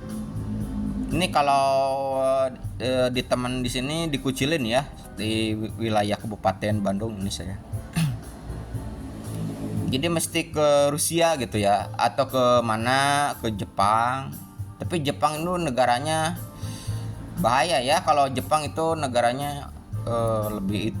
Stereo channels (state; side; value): identical; both; correlation 1.00